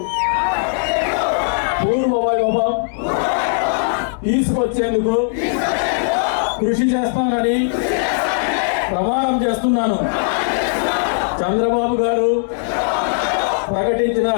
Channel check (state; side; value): silent; right; digital silence